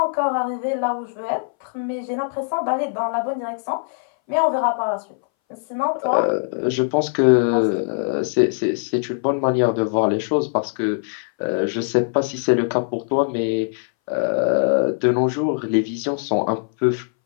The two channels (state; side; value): silent; right; 62 dB below the other